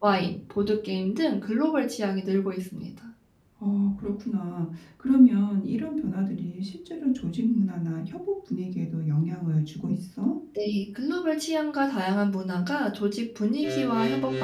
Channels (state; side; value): identical; both; correlation 1.00